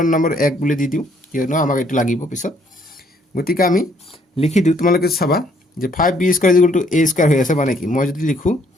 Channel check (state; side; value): normal; both; correlation 0.66